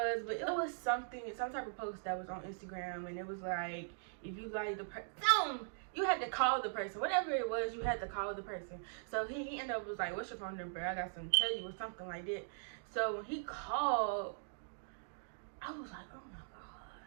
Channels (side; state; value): left; silent; digital silence